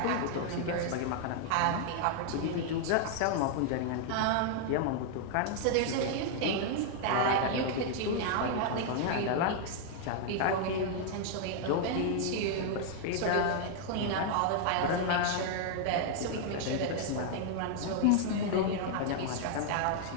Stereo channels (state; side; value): different; both; correlation 0.00